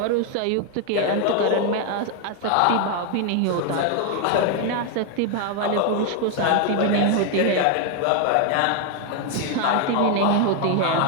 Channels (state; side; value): different; both; correlation 0.00